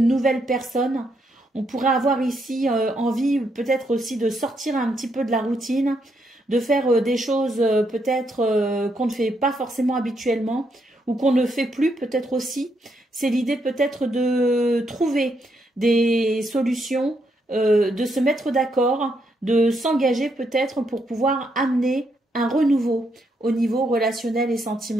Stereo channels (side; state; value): both; normal; correlation 0.77